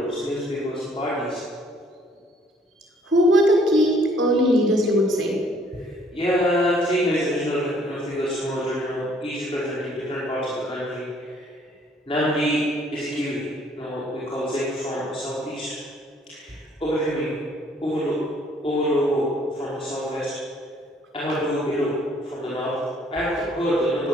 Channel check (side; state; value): both; normal; correlation 0.62